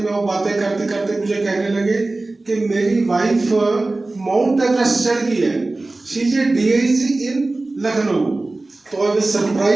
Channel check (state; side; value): quieter; left; 3.1 dB